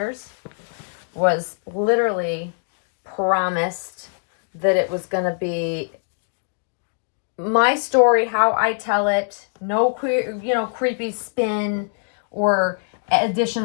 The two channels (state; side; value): silent; right; digital silence